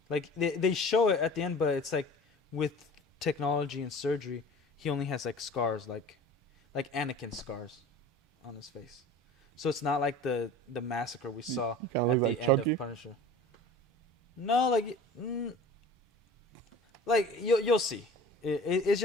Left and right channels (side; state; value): both; normal; correlation 0.41